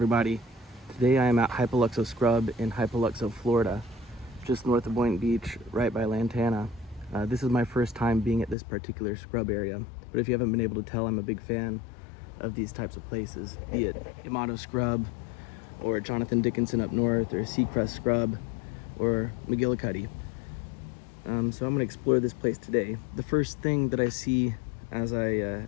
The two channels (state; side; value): drops out; right; at 8.6 s